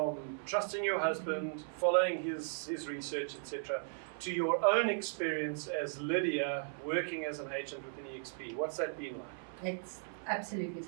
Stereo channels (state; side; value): silent; left; 53 dB below the other